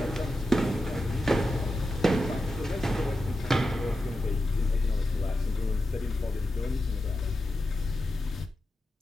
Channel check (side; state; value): both; normal; correlation 0.90